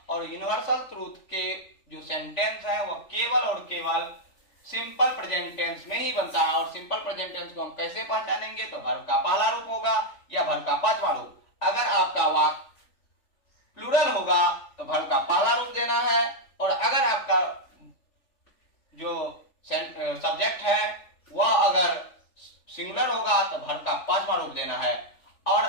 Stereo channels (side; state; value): right; late; 3.4 ms